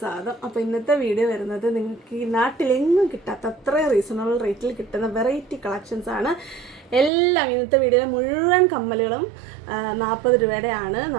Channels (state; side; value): drops out; left; at 7.1 s